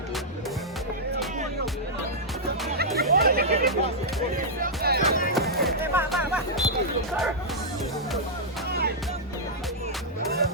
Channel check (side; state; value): both; normal; correlation -0.08